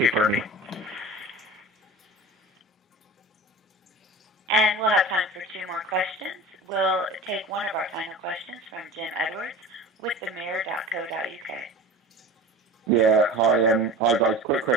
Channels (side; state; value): both; normal; correlation 0.35